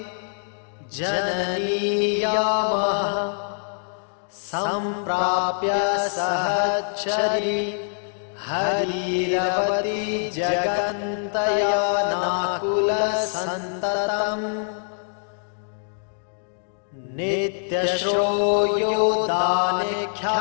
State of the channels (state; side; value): silent; right; digital silence